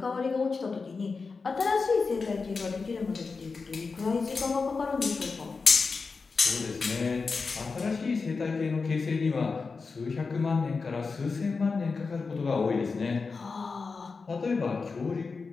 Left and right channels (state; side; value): quieter; right; 4.5 dB